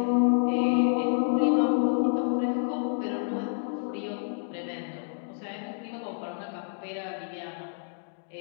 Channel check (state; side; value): silent; right; digital silence